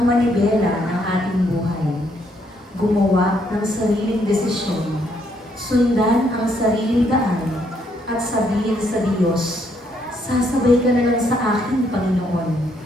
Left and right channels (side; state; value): both; normal; correlation 0.71